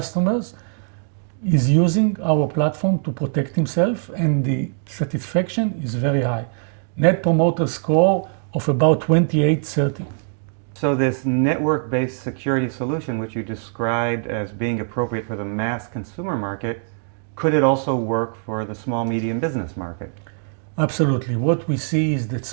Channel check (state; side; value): silent; left; 61 dB below the other